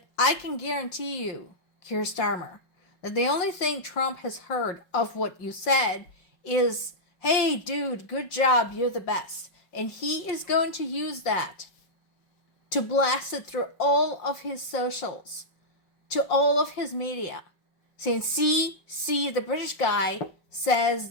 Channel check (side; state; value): right; late; 5.4 ms